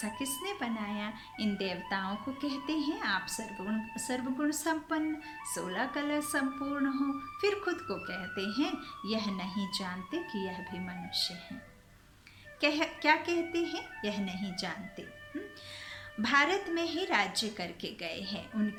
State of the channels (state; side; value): identical; both; correlation 1.00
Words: किसने बनाया। इन देवताओं को कहते हैं आप सर्वगुण संपन्न, 16 कला संपूर्ण हो। फिर खुद को कहते हैं यह नहीं जानते कि यह भी मनुष्य हैं। क्या कहते हैं? यह नहीं जानते। भारत में ही राज्य करके गए हैं,